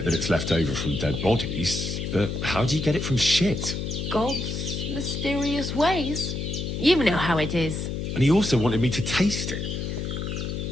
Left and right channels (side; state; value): left; noise; hum, 3 dB below the sound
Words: that it's left over from dead bodies, but how do you get it from shit? God's mysterious ways. You know how it is. And he also wanted me to taste it.